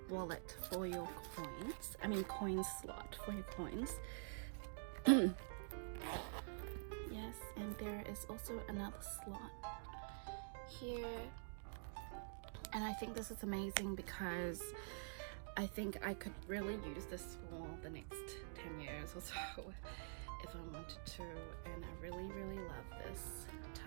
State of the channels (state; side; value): silent; left; digital silence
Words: wallet for your coins. I mean coin slot for your coins. Yes, and there is also another slot here, and I think this is amazing because I think I could really use this for the next 10 years or so if I wanted to, and I really love this